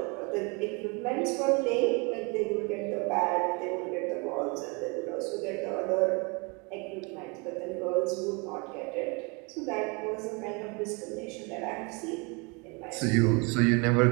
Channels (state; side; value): quieter; left; 30.6 dB